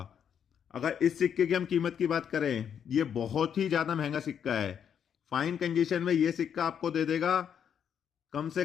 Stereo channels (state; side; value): quieter; right; 8.2 dB